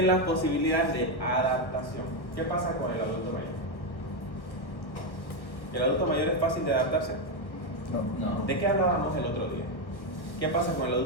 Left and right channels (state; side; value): late; right; 1.2 ms